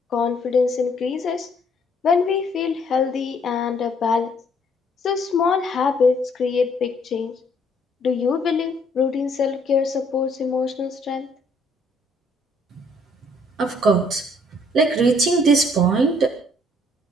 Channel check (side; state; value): both; normal; correlation 0.65